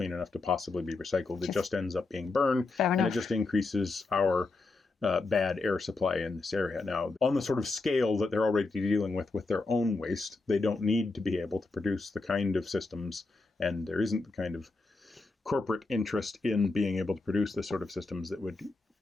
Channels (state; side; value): quieter; right; 3.5 dB